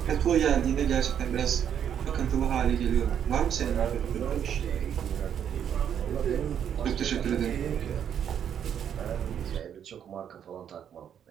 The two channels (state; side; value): quieter; left; 8.9 dB